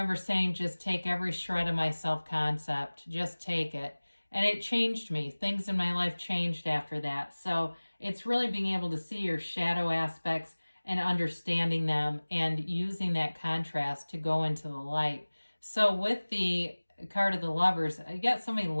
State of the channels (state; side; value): inverted; both; correlation -1.00